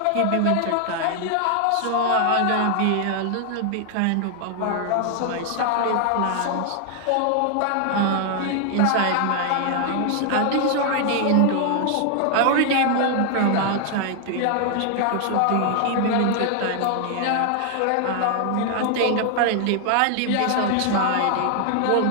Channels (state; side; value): different; both; correlation 0.00